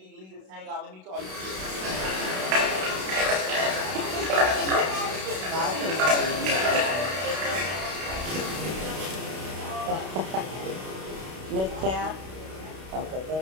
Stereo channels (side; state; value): left; late; 32 ms